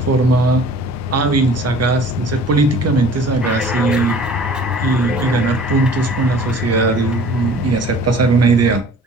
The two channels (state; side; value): normal; both; correlation 0.48